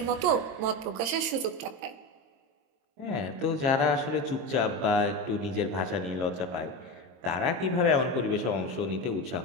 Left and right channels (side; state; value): left; late; 22 ms